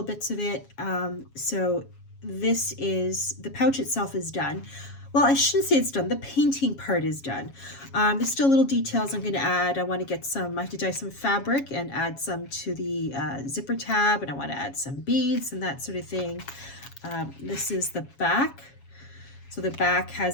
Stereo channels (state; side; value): late; right; 7.3 ms